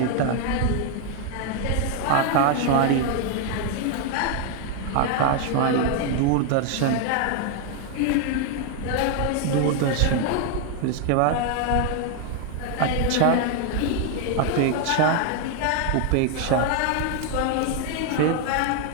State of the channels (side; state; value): both; different; correlation 0.00